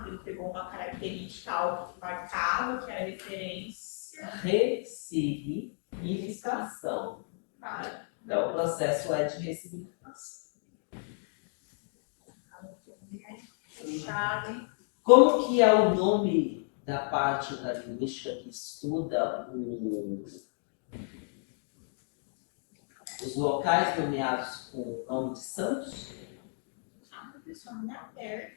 Ele pegou uma característica algo que marcava, que era referência. Ressignificação. Então, o processo é de ressignificação. Como que é o nome da parte da linguística que estuda os locais nomeados com o nome de santos? Pessoal, não é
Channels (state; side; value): silent; right; 56 dB below the other